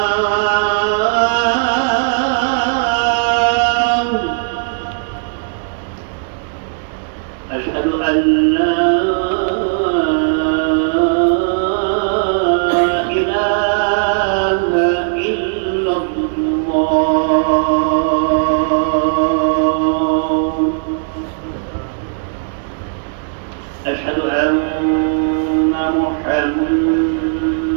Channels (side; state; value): left; silent; digital silence